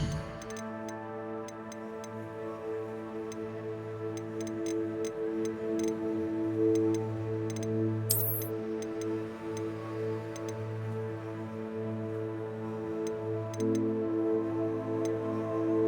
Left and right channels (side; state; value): both; identical; correlation 1.00